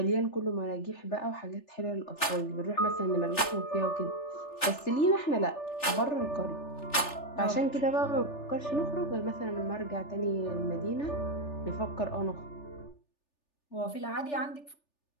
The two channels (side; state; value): right; late; 3.4 ms